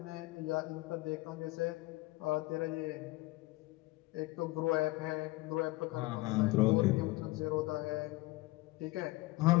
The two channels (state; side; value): quieter; right; 20.7 dB